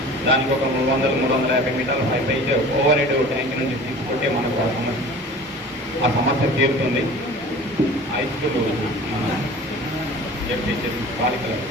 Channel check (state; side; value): normal; both; correlation 0.41